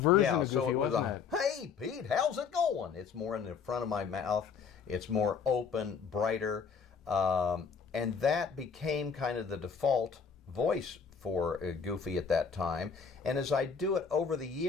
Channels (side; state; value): right; quieter; 6.1 dB